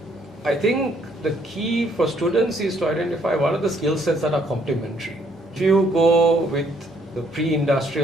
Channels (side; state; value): both; normal; correlation 0.67